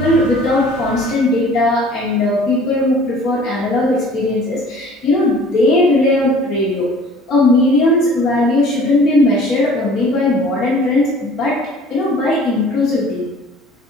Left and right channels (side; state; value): both; normal; correlation 0.49